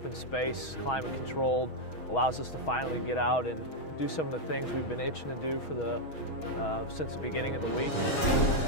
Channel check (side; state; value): right; late; 6.3 ms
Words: space, climate controlled, allows us to finally get out and do some of the things we've been itching to do for since the beginning of the week.